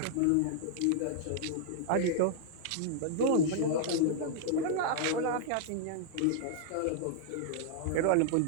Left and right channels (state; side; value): different; both; correlation -0.01